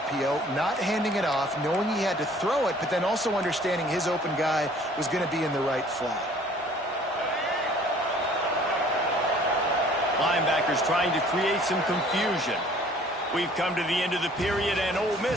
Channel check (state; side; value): normal; both; correlation 0.54